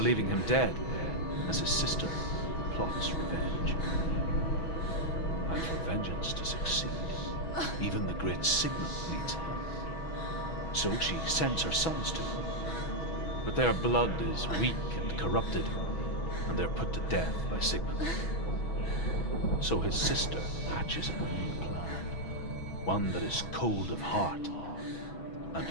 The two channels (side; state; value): right; late; 6.1 ms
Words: him dead, as his sister plots revenge. And for vengeance to succeed, even the great Sigmund needs help. So she sends her sons to him. But their blood is weak and corrupted, and they're put to death by Sigmund. So his sister hatches a new plan, one that is cold of heart